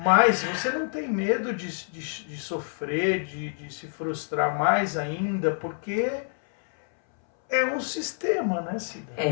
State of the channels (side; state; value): right; silent; 60 dB below the other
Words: Mas você não tem medo de sofrer, de se frustrar mais ainda, porque é um sistema, né, Cida?